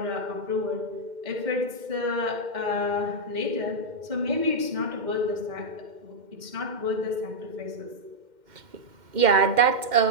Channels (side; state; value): left; late; 2.1 ms